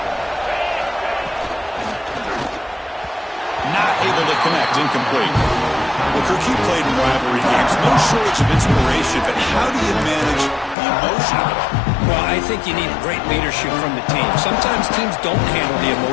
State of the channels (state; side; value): drops out; right; at 10.8 s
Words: Not able to connect, incomplete. Well, Kirk, you played in rivalry games. No shortage of inspiration, but how do you manage the emotion of it all? Well, I think you need great leadership from the team. Sometimes teams don't handle the